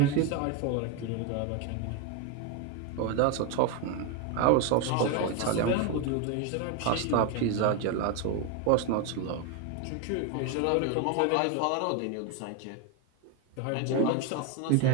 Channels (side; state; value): both; different; correlation 0.02